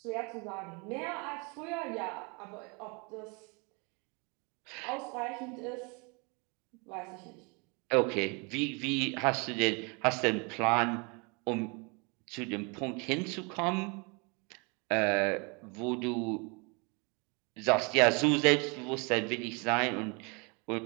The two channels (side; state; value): left; quieter; 31.1 dB